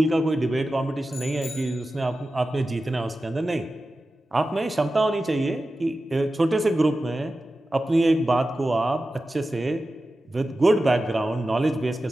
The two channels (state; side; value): normal; both; correlation 0.94